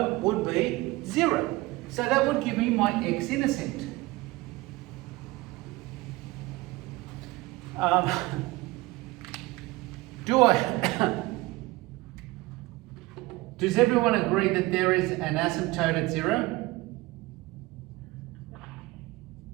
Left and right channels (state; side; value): quieter; left; 20.7 dB